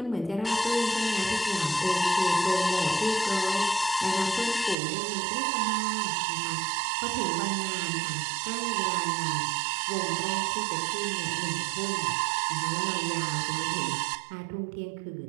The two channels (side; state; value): left; drops out; at 4.8 s